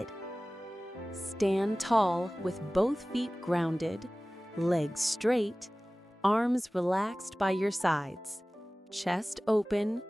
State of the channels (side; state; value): both; normal; correlation 0.98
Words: Stand tall with both feet grounded, legs straight, arms relaxed by your sides, chest open,